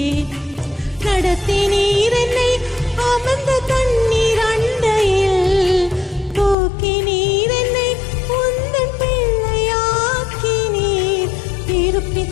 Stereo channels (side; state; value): right; drops out; at 6.6 s